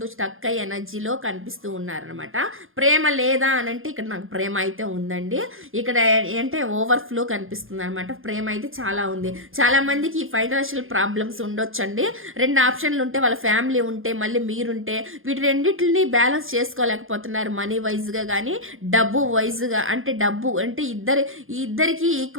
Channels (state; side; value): late; left; 0.60 ms